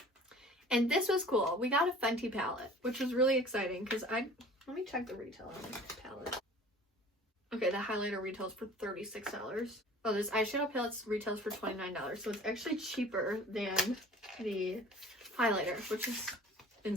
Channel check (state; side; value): normal; both; correlation 0.46